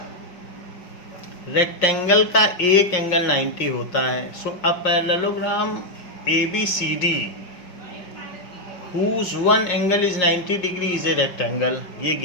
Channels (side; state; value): right; late; 5.6 ms